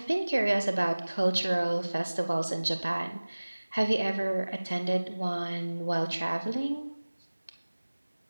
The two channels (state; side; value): inverted; both; correlation -1.00